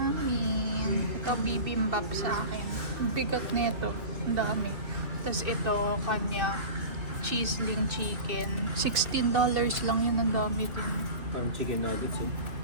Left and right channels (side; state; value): left; late; 2.6 ms